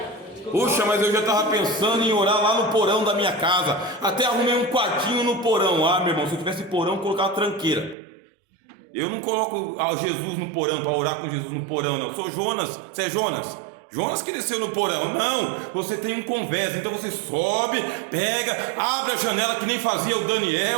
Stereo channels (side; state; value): left; drops out; at 8.0 s